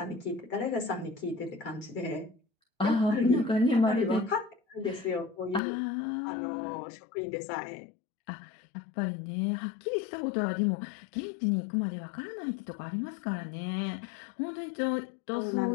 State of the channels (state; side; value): drops out; right; at 5.6 s